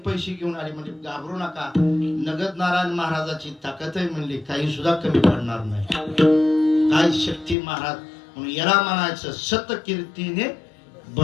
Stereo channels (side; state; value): right; drops out; at 7.6 s